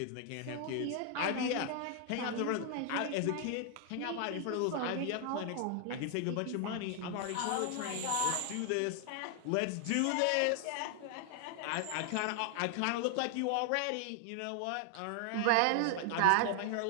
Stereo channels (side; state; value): both; different; correlation 0.00